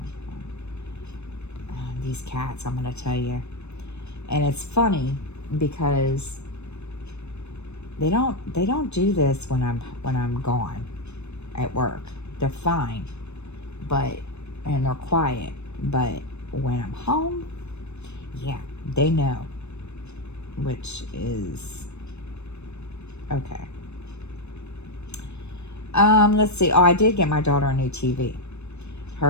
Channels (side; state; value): right; late; 0.81 ms